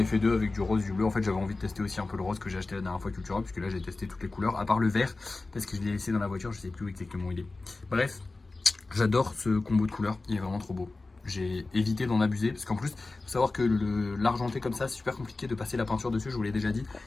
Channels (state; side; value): quieter; right; 3.4 dB